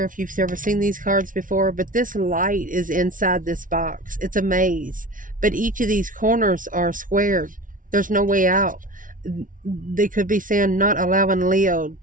if you've ever seen these cards before, but this light is inside this box. It's a maze. But each of these corners are squared. There's no way out. They could be saying not allowing Leo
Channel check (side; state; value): left; late; 0.38 ms